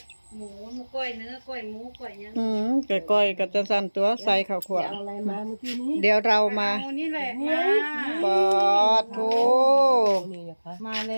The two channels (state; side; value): inverted; both; correlation -1.00